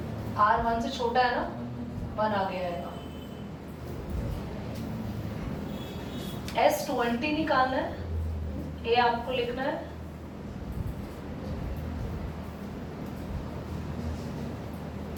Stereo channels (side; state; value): both; identical; correlation 1.00